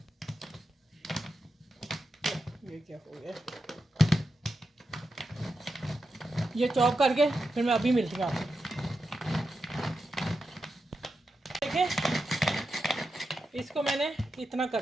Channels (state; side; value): normal; both; correlation 0.88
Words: ये क्या हो गया, ये चॉप करके फिर मैं अभी मिलती हूँ आपको। देखें इसको मैंने इतना